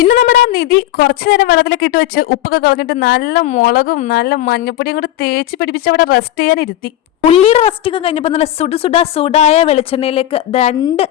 നമ്മുടെ ആ നിധി കുറച്ചു നേരം വെള്ളത്തിലൊക്കെ ഇട്ട് വെച്ച് ഉപ്പൊക്കെ കളഞ്ഞിട്ട് നല്ല മുളകും നല്ല മഞ്ഞപ്പൊടിയും കൂടെ തേച്ച് പിടിപ്പിച്ച് അവിടെ റെസ്റ്റ് ചെയ്യാൻ ഇരുത്തി. ഉള്ളിയുടെ റെസ്റ്റിങ് കഴിഞ്ഞപ്പോൾ നല്ല സുടായ വെളിച്ചെണ്ണയിലേക്ക് 2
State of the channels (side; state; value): right; quieter; 13.2 dB